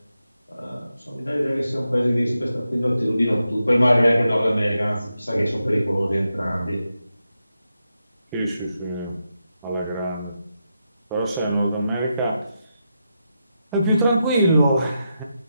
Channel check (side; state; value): both; inverted; correlation -0.87